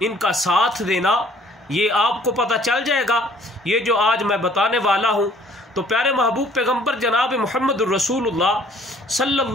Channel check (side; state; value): both; normal; correlation 0.58